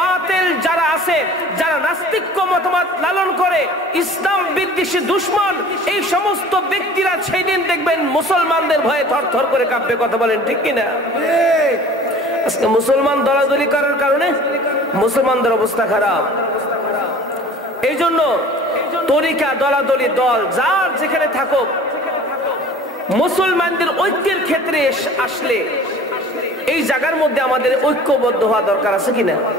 যারা আছে, যারা নাস্তিক্য মতবাদ লালন করে, ইসলাম বিদ্বেষী দুশমন, এই সমস্ত ব্যক্তিরা সেই দিন দেখবেন মুসলমানদের ভয়ে থরথর করে কাঁপবে। কথা বলেন ঠিক কিনা? আজকে মুসলমান দলাদলি করার কারণে মুসলমানদের অবস্থা খারাপ। এই জন্য তরিকা, দলাদলি, দল যার যেখানে থাকুক, মুসলমানদের ঐক্যের ক্ষেত্রে আসলে এই জায়গার মধ্যে আমাদের ঐক্যবদ্ধ হওয়া দরকার আছে কিনা?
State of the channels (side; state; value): both; normal; correlation 0.45